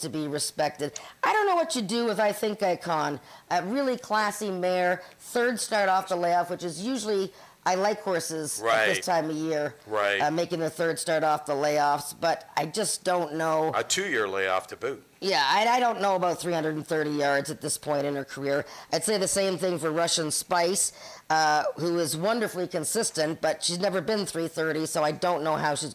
be respected. I don't know what you do with I Think Icon. A really classy mare, 3rd start off the layoff, which is usually, I like horses at this time of year, making the 3rd start off the layoffs, but I just don't know. A 2-year layoff to boot. Yeah, I don't know about 330 yards at this point in her career. I'd say the same thing for Russian Spice, who is wonderfully consistent, but she's never been 330, so I don't know how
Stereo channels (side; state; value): both; identical; correlation 1.00